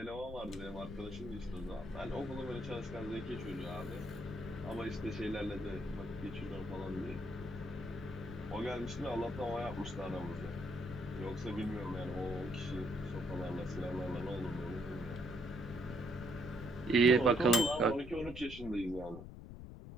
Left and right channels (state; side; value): noise; left; rumble, 11 dB below the sound